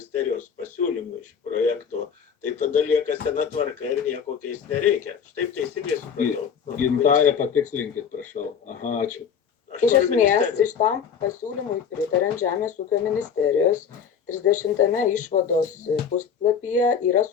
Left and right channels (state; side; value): quieter; right; 7.1 dB